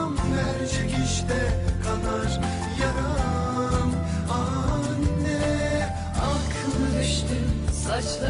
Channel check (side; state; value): both; identical; correlation 1.00